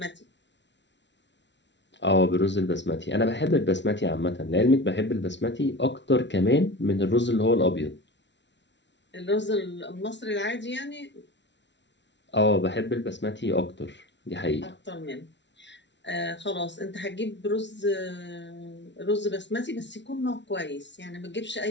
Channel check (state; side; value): late; right; 0.52 ms